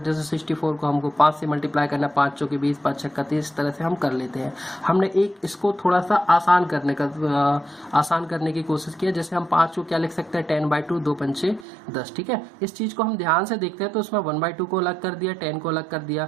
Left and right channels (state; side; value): drops out; left; at 11.7 s